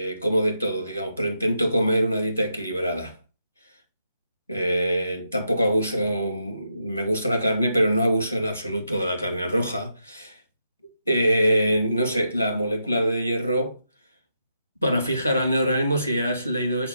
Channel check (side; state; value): both; inverted; correlation -0.82